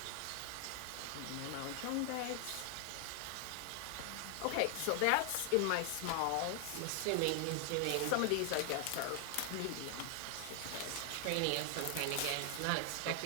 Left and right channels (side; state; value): both; different; correlation 0.00